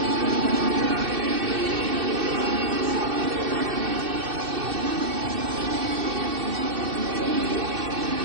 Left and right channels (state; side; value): late; left; 2.6 ms